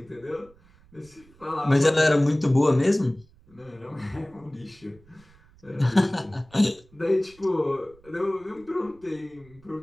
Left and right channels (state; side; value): noise; right; rumble, 28 dB below the sound